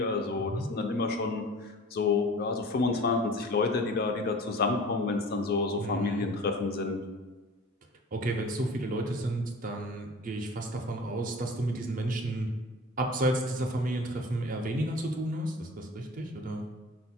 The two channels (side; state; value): both; normal; correlation 0.42